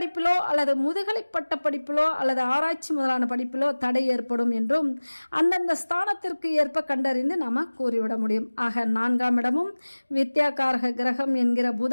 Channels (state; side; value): inverted; both; correlation -1.00